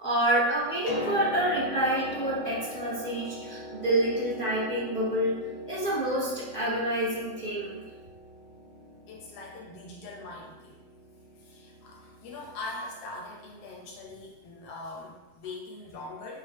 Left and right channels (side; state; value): right; late; 7.8 ms